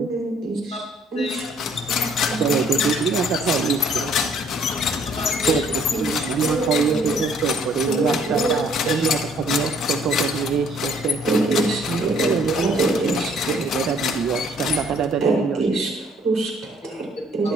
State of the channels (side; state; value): both; normal; correlation 0.62